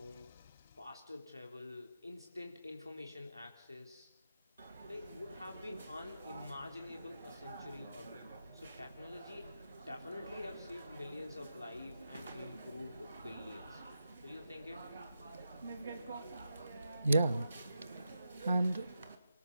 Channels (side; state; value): both; inverted; correlation -0.87